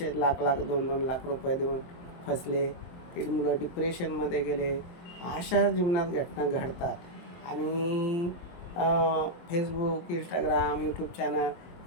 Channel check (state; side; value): late; right; 23 ms